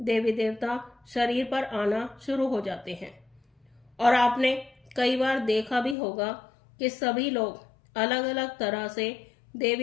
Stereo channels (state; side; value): drops out; right; at 6.0 s